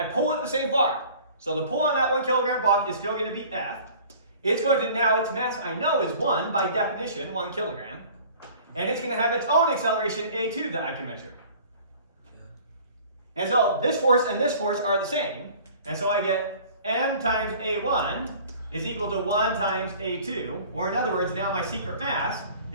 pull it the same far. So the pull on that 1 kilogram block is still going to be F. It's going to, now its mass I know is 1 by definition, 1 kilogram. And it's going to have its own acceleration A2 that I can measure. And so this force and this force are the same. And so I get m times A1 is equal to 1 times A2. Or in other words, now my secret mass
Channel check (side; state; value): both; inverted; correlation -0.48